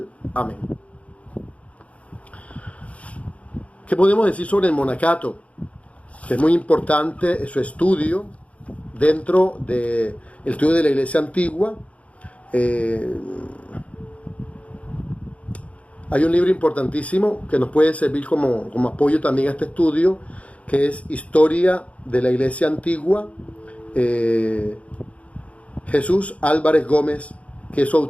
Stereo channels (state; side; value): late; right; 0.065 ms